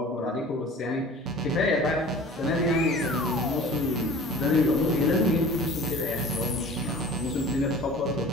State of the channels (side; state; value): both; normal; correlation 0.43